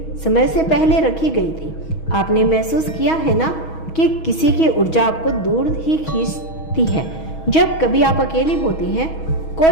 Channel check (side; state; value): right; late; 6.2 ms